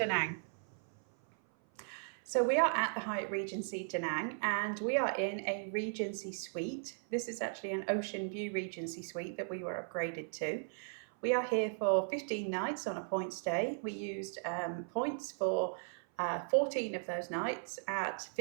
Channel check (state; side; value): silent; left; 53 dB below the other